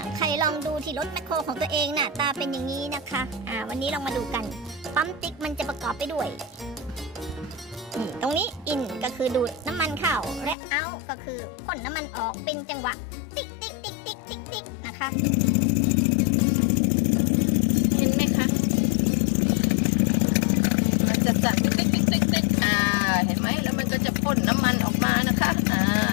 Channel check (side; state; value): right; drops out; at 10.6 s